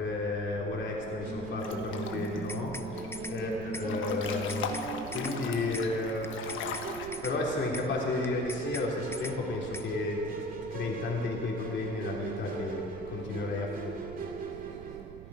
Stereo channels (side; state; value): right; noise; rumble, 13 dB below the sound